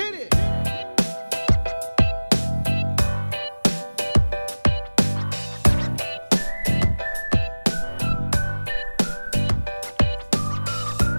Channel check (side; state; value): both; inverted; correlation -1.00